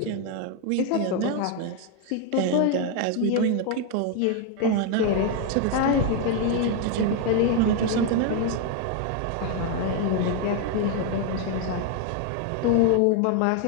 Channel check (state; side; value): different; both; correlation 0.01